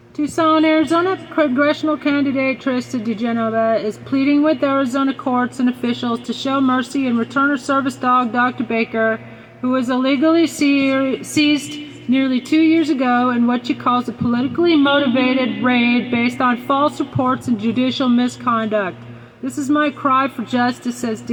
Tucson, Arizona, congressional candidate Trista Di Genova is pleading with Arizona courts and officials to show mercy and return her service dog, Dr. Baker, who was illegally seized nearly 2 years ago in what she calls a politically motivated raid based on false reports and judicial misconduct. This is my cry for justice, says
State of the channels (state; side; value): identical; both; correlation 1.00